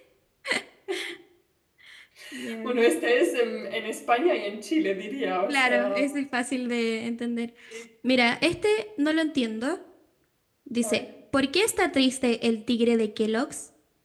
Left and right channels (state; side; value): identical; both; correlation 1.00